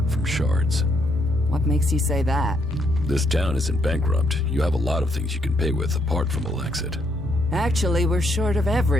from shards. What makes you say that? This town isn't bankrupt. You have a lot of things you can pay with apart from ELEX. Actually, we're short of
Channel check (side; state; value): both; normal; correlation 0.73